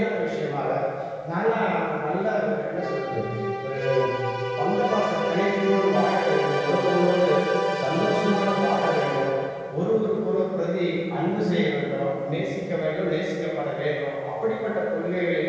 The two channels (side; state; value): both; identical; correlation 1.00